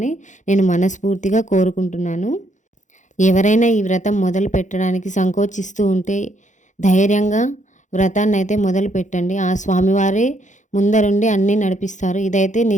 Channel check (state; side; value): late; right; 0.35 ms